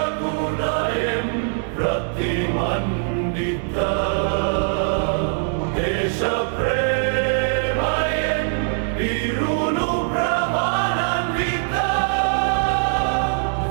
Gunayam Pratimandita Desha Premayen Virunu Brahmananvita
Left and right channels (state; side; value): silent; left; digital silence